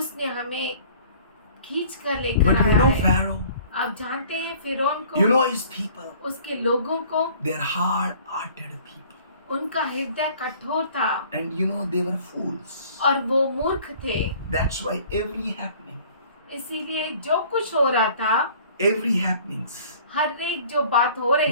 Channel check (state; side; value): inverted; both; correlation -0.51